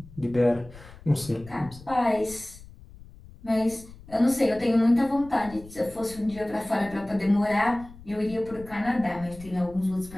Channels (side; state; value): left; noise; rumble, 19 dB below the sound